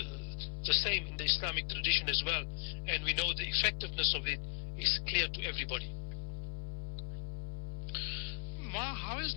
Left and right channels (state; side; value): silent; right; 53 dB below the other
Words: same in the Islamic tradition as well, and we know the effectiveness of it is clear to everybody. Ma, how has